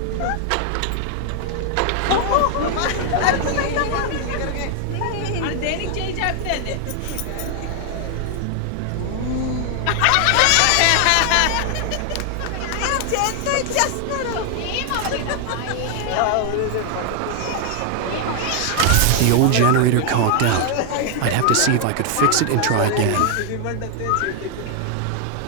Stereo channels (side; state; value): both; different; correlation 0.00